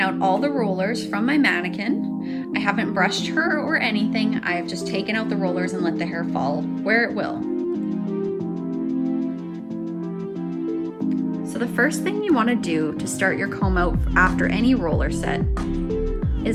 out all the rollers from my mannequin. I haven't brushed her or anything. I have just taken out the rollers and let the hair fall where it will. So the first thing you want to do to start your comb out after any roller set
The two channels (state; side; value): identical; both; correlation 1.00